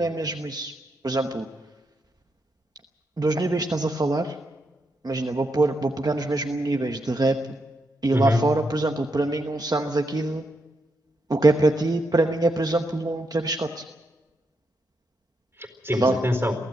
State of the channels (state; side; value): normal; both; correlation 0.81